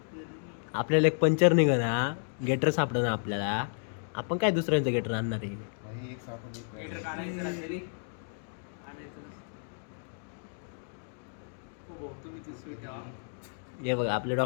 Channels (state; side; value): silent; right; digital silence